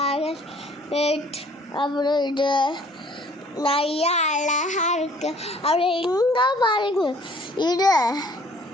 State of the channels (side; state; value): both; normal; correlation 0.56